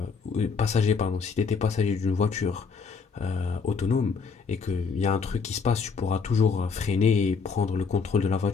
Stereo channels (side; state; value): right; quieter; 5.4 dB